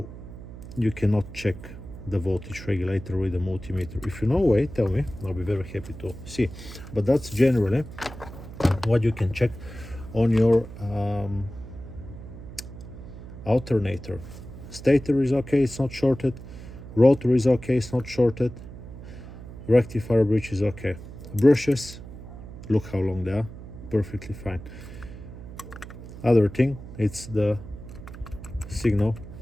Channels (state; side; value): noise; right; hum, 13 dB below the sound